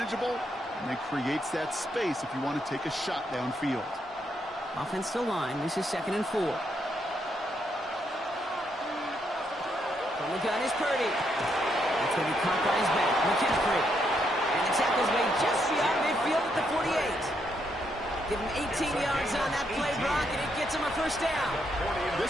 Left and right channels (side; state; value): both; normal; correlation 0.77